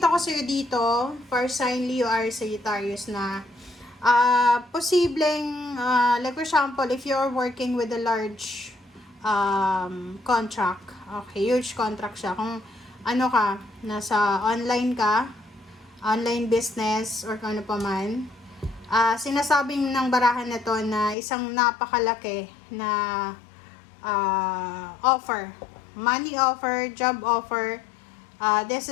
ko sa'yo dito, for sign Leo or Sagittarius na posibleng, like for example, if you're working with a large contract. Okay, huge contract siya. Kung ano ka, nasa online ka, online business, or kung ano pa man, sinasabing ng barahan na to na isang napakalaki na offer. Money offer, job offer.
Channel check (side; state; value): right; drops out; at 21.2 s